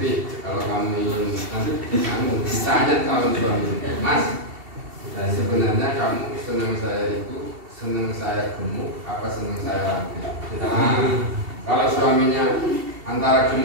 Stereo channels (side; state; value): left; late; 2.7 ms